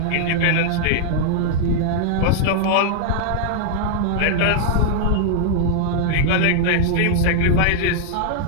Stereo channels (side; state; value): both; different; correlation -0.01